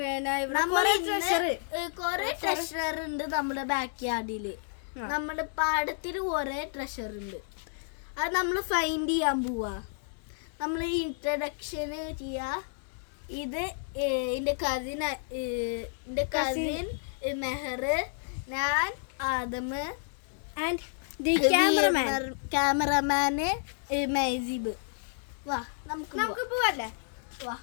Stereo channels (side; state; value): right; silent; 57 dB below the other